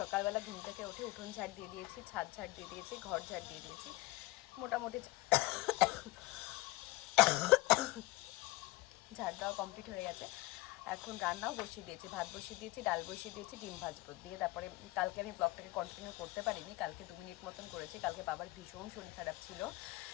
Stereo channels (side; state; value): right; quieter; 20.3 dB